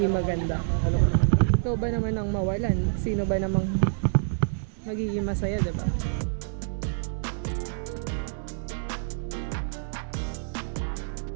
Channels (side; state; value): left; silent; digital silence